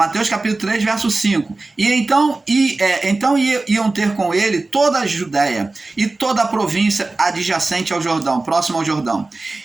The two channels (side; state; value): left; quieter; 3.3 dB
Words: capítulo 3, verso 5. Então iam ter com ele toda a Judéia e toda a província adjacente ao Jordão, próximo ao Jordão.